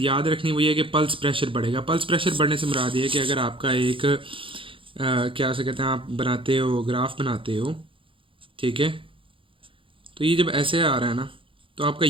याद रखनी वो ये है कि पल्स प्रेशर बढ़ेगा। पल्स प्रेशर बढ़ने से मुराद ये है कि अगर आपका एक क्या से कहते हैं, आप बनाते हो ग्राफ बनाते हो, ठीक है, तो ये जब ऐसे आ रहा है ना तो आपका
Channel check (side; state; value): left; late; 0.25 ms